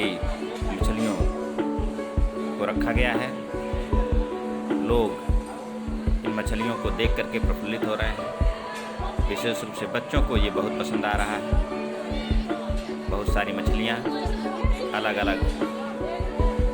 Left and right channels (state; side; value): identical; both; correlation 1.00